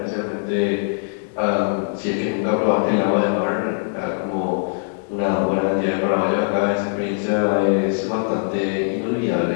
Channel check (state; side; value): silent; right; digital silence